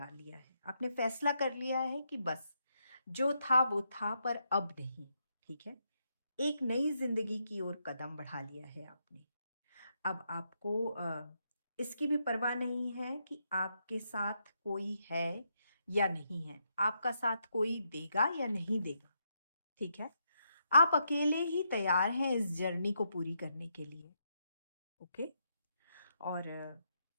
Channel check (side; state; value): both; inverted; correlation -0.80